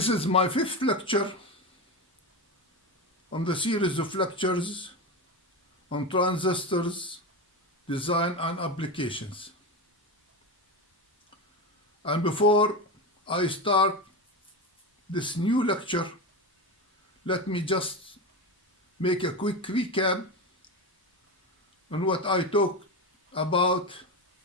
is my fifth lecture on the series of lectures on transistors, design and applications. And before I start this new lecture, let me just make a quick recap on what I talked about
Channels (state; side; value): normal; both; correlation 0.19